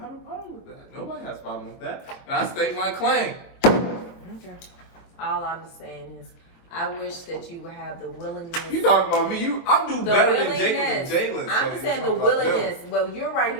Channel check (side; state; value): right; late; 23 ms